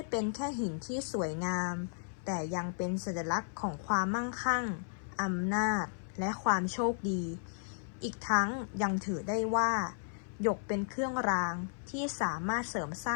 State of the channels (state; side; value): silent; right; 55 dB below the other